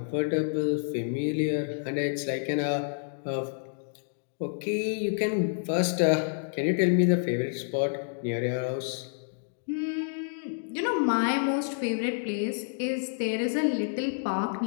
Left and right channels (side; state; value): right; silent; digital silence